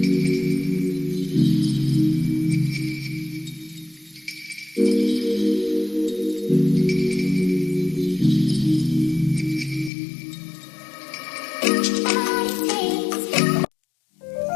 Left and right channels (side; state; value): right; drops out; at 9.9 s